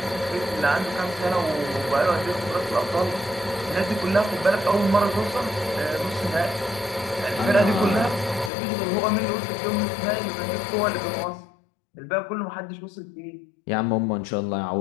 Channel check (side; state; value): right; drops out; at 8.5 s